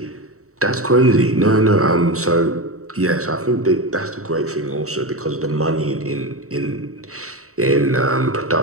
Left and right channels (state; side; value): late; left; 0.64 ms